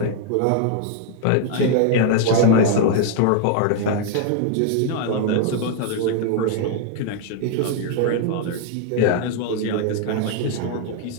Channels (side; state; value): both; different; correlation 0.00